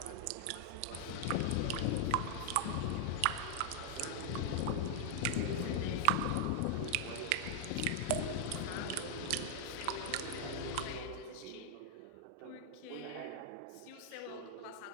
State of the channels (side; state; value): both; different; correlation 0.00